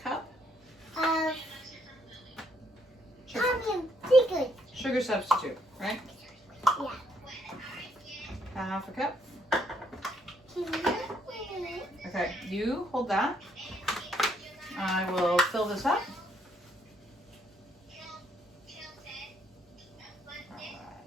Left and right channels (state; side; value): normal; both; correlation 0.71